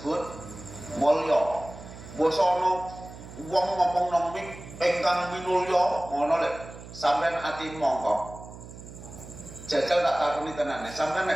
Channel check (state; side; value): noise; right; hum, 15 dB below the sound